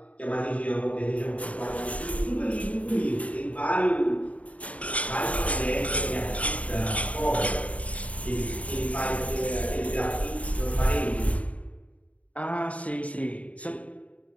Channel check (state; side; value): late; right; 0.067 ms